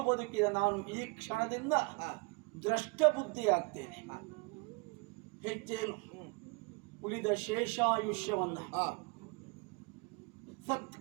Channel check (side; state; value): left; quieter; 29.4 dB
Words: ಬದುಕಿದ ನಾನು ಈ ಕ್ಷಣದಿಂದ ದ್ರಷ್ಟ ಬುದ್ಧಿ ಆಗ್ತೇನೆ. ಹೆಚ್ಚೇನು, ಉಳಿದ ಶೇಷಾಯುಷ್ಯವನ್ನ